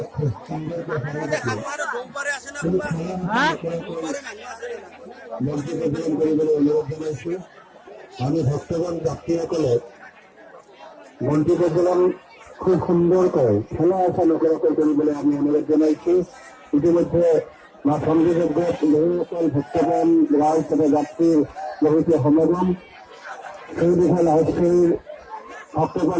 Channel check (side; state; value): both; identical; correlation 1.00